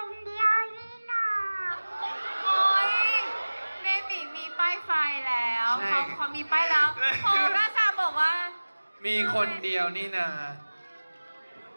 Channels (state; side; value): inverted; both; correlation -1.00